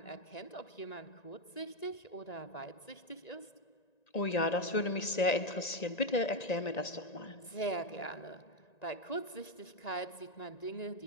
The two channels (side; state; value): right; late; 1.9 ms